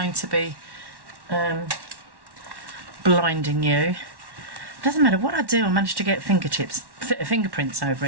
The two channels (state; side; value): late; left; 1.1 ms